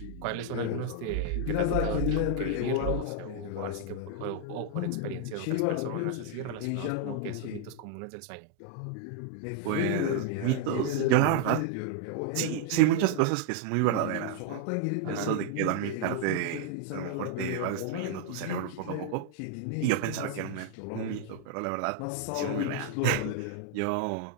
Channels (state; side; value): different; both; correlation -0.01